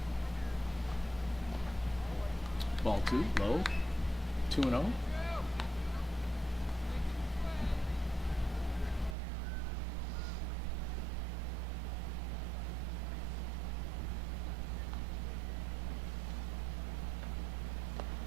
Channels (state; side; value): drops out; left; at 9.2 s